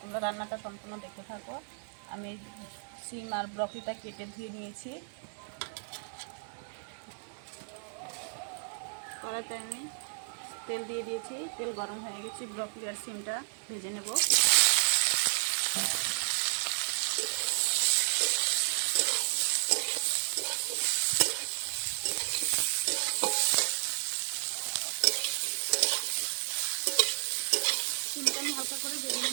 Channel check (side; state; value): left; silent; digital silence